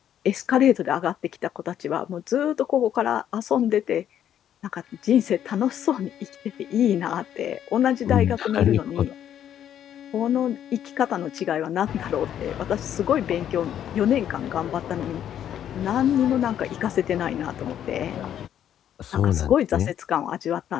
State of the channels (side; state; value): right; quieter; 10.2 dB